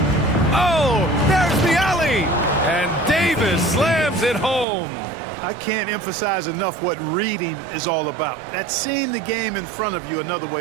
Oh, there's the alley! And Davis slams it home. I can't emphasize enough what reading is all about. That's seeing the game in front of you, another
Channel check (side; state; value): left; drops out; at 4.7 s